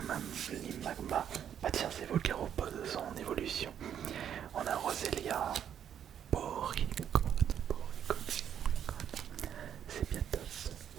Bah tiens, c'est Volcaropode, son évolution. On a Roselia, Porygon, c'est bien top.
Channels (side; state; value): left; quieter; 9.2 dB